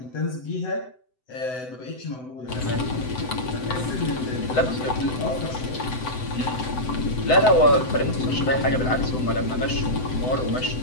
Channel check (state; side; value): late; right; 7.9 ms